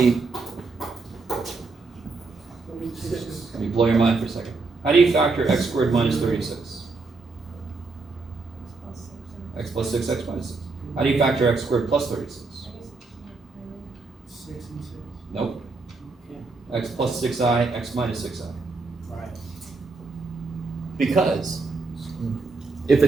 blow your mind for a second. How do you factor x squared minus 36? X plus 6, x minus 6. How do you factor x squared plus 36? 6 and 6. Nope. Okay. X plus 6i, x minus 6i. Right. Because if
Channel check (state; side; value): quieter; left; 4.0 dB